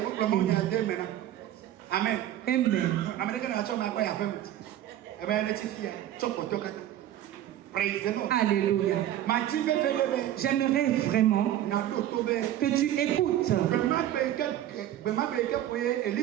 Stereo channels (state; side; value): quieter; left; 12.3 dB